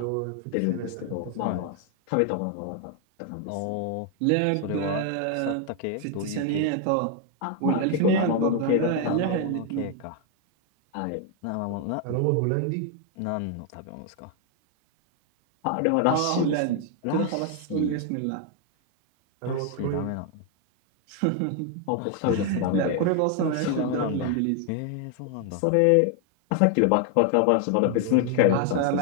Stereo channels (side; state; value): both; different; correlation 0.00